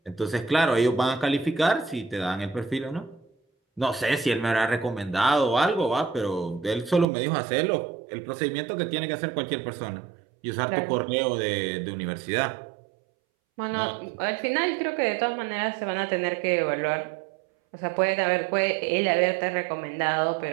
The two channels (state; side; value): drops out; left; at 7.1 s